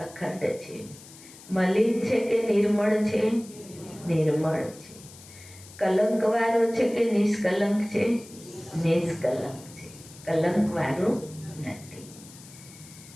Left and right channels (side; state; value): left; noise; hiss, 19 dB below the sound